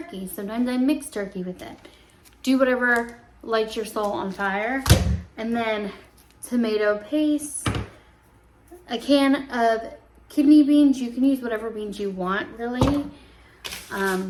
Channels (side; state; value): both; identical; correlation 1.00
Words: sometimes I mix turkey with it. Do whatever lights your soul on fire. And then tomato paste, a can of kidney beans. You can use whatever beans you want, really.